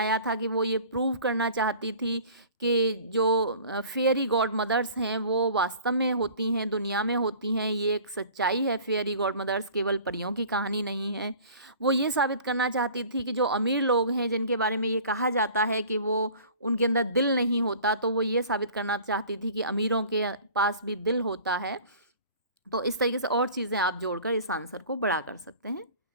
था कि वो ये प्रूव करना चाहती थी कि जो फेयरी गॉड मदर्स हैं वो वास्तव में होती हैं, दुनिया में होती हैं, ये एक सच्चाई है, फेयरी गॉड मदर्स केवल परियों की कहानी नहीं है। वो ये साबित करना चाहती थी कि जो अमीर लोग हैं जिनके बारे में ये कहा जाता है कि वो उनके अंदर दिल नहीं होता, तो वो ये साबित करना चाहती थी कि अमीरों के पास भी दिल होता है। तो इस तरीके से और चीज़ें आप जोड़कर इस आंसर को बड़ा कर सकते हैं।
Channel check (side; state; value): both; inverted; correlation -0.46